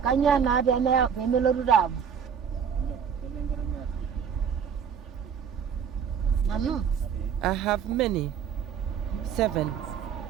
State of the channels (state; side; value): quieter; left; 7.3 dB